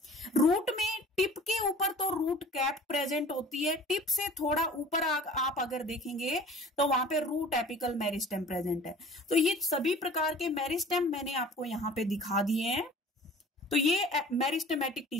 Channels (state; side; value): normal; both; correlation 0.45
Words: रूट में टिप के ऊपर तो रूट कैप प्रेजेंट होती है, टिप से थोड़ा ऊपर आप अगर देखेंगे तो वहां पे रूट एपिकल मेरिस्टेम प्रेजेंट है। तो ये सभी प्रकार के मेरिस्टेम मैंने आपको यहाँ पे दिखा दिए हैं। तो ये मेरिस्टेमेटिक